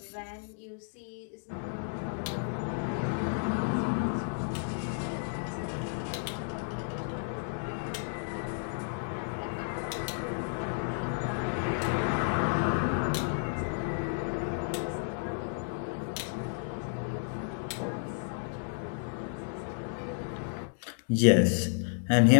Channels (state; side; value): silent; right; digital silence